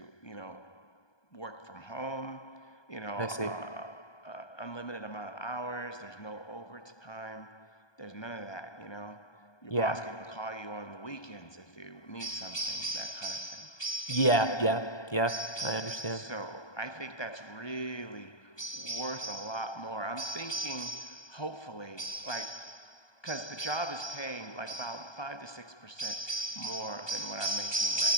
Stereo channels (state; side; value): late; right; 1.2 ms